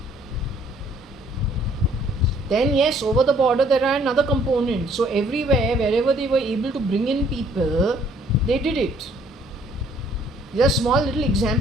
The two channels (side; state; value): both; normal; correlation 0.61